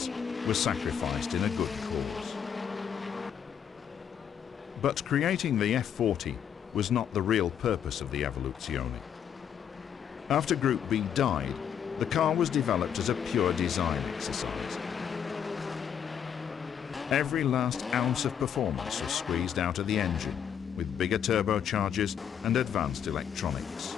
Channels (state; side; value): quieter; right; 8.5 dB